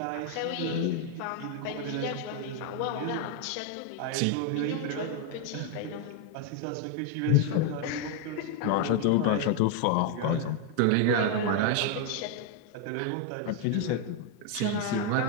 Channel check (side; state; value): both; different; correlation 0.01